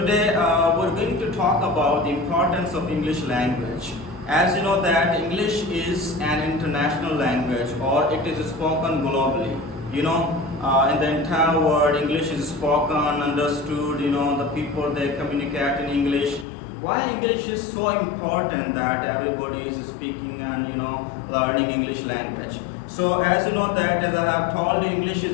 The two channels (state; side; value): drops out; right; at 16.4 s